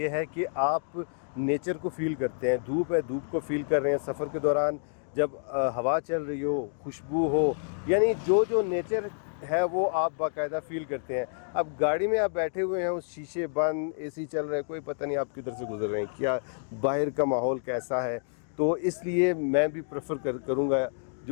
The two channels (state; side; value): silent; right; digital silence